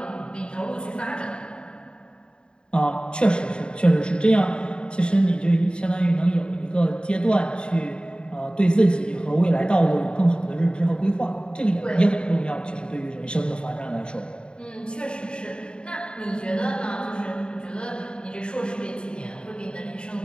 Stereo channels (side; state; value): right; late; 0.051 ms